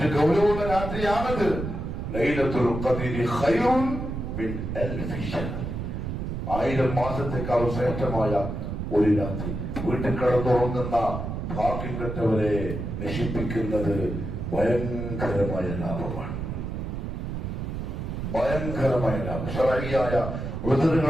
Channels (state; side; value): noise; right; rumble, 5 dB below the sound